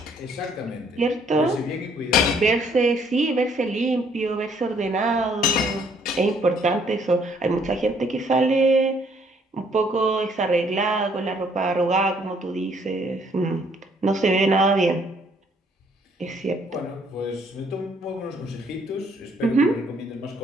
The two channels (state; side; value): normal; both; correlation 0.65